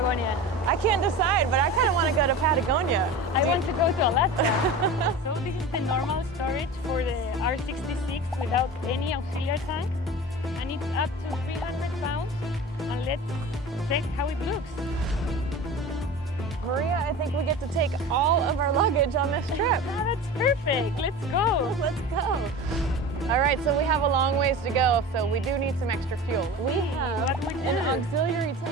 I can't decide, but I kind of want to go to Patagonia. I want to go to Alaska. So this is the normal storage for the R66 without any auxiliary tank. And it's up to 300 pounds. And let's check how it looks. Maria, I think we get to take all of our luggage on this trip. Oh, that's perfect. Let's go. Let's go. All right, so we have a long ways to go, so we do need some extra fuel. We have an auxiliary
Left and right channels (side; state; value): both; normal; correlation 0.34